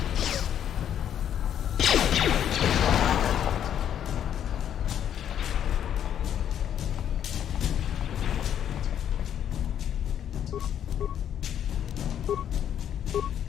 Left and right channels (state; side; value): quieter; right; 9.7 dB